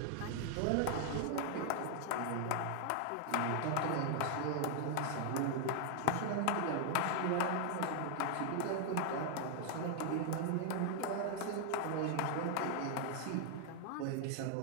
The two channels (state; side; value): different; both; correlation 0.00